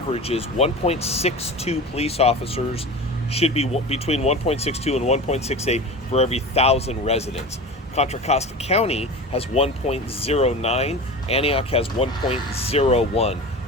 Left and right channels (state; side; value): normal; both; correlation 0.31